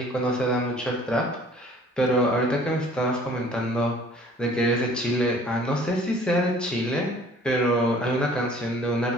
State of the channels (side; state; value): both; normal; correlation 0.53